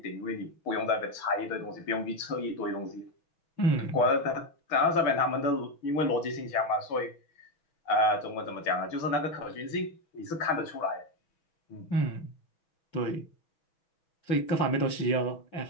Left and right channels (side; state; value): right; late; 6.2 ms